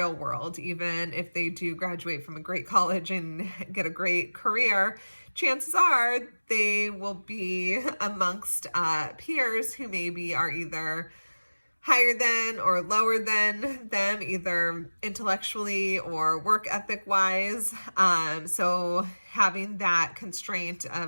world. Even if they do graduate from a great college and get a great career, chances are they will be amongst peers who maybe are either higher than or lower than them, either intellectually or work ethic wise. So having that constraint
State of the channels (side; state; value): both; inverted; correlation -1.00